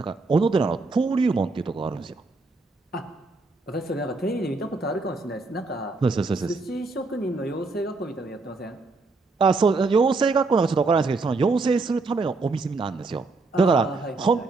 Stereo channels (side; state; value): left; quieter; 3.7 dB